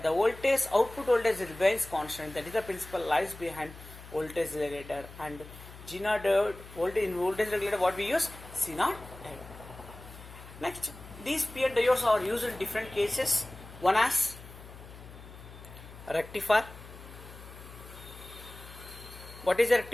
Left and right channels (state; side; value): noise; left; hum, 16 dB below the sound